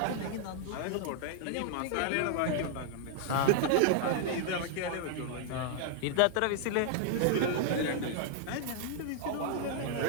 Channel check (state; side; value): different; both; correlation 0.00